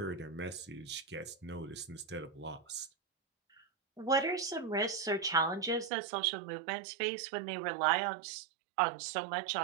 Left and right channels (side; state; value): left; drops out; at 5.9 s